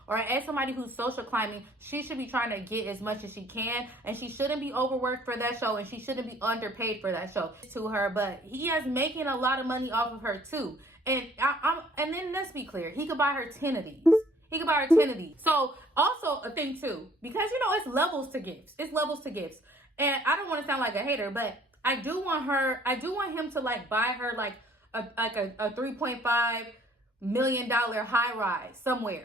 or as somebody who's social climbing, she should be trying to get as much as she can, and she shouldn't be overworked for that show, and she shouldn't be underpaid for that show to her. But he is making a lot of money off of her too. And and then let's be clear, he could buy her 10 of these. He could buy her 10 of these. So also a thing too, because you know it's levels to gifts. It's levels to gifts. And I don't want to sound like a hater, but I do want him to like buy her like a $3.5 million high rise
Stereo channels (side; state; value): both; normal; correlation 0.58